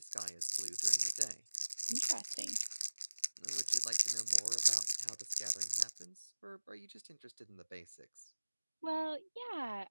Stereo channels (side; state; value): both; inverted; correlation -1.00